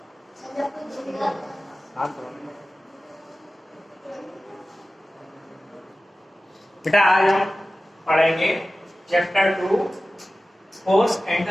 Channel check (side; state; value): both; normal; correlation 0.95